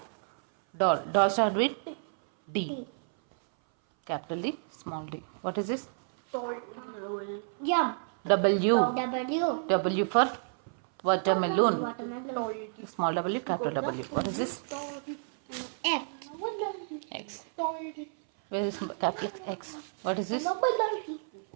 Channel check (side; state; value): left; silent; 57 dB below the other